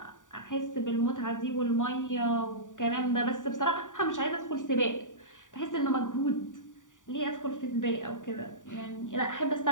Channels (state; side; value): late; right; 0.87 ms